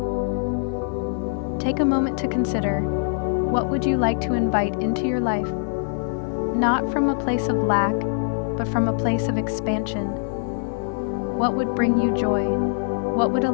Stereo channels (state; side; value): silent; right; digital silence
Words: Take a moment to consider, what would you like to invite into your life? Not from a place of lack, but from a place of expansion. What would bring you joy? What would